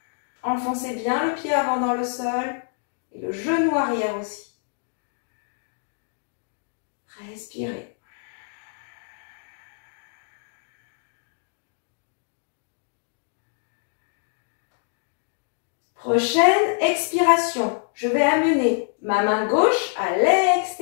Enfoncez bien le pied avant dans le sol et le genou arrière aussi. Respirez. Prochaine expiration. Je vais amener ma main gauche à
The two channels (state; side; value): silent; right; 61 dB below the other